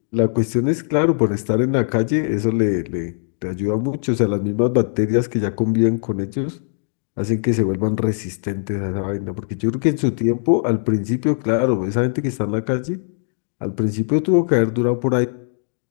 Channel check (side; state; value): right; silent; digital silence